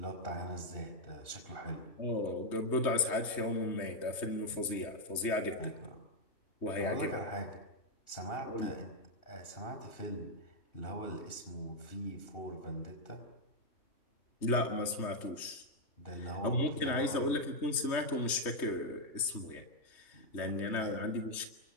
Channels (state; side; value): late; right; 3.3 ms